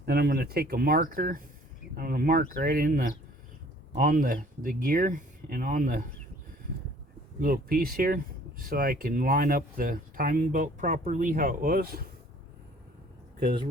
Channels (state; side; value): normal; both; correlation 0.54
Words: Then I'm going to take a marker. I'm going to mark right in the on the gear and on the little piece here, so I can line up the timing belt properly how it was, because